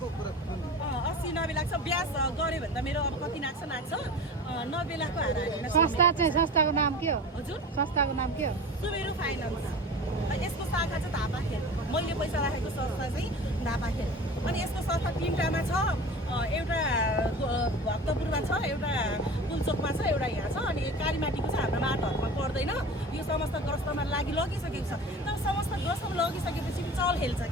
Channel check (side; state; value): both; normal; correlation 0.35